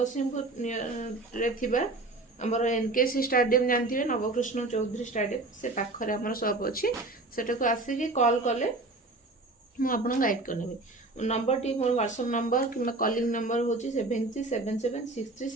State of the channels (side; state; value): left; quieter; 3.0 dB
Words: आमर एनकेसी स्टाडियम जानते नवकृष्ण चौधरी स्टाडियम से पाखरे आम शॉप अच्छी सेटा आसिक कॉल कले मुझे गाइड करनेबी। नंबर टी मोर व्हाट्सएप नंबर कि कॉलिंग नंबर हूँ